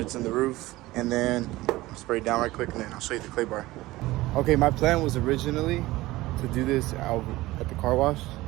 in the roof and then spray it down right quick, and then I'll show you the clay bar. Okay, my plan was originally to do this out at the car wash,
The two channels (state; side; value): quieter; left; 18.4 dB